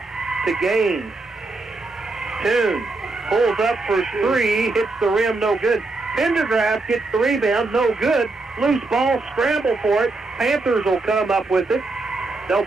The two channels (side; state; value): left; quieter; 3.4 dB